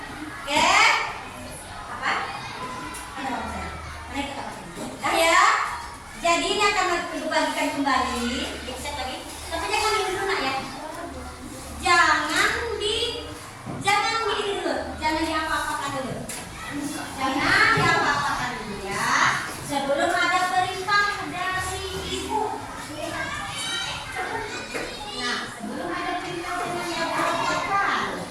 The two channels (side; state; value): both; identical; correlation 1.00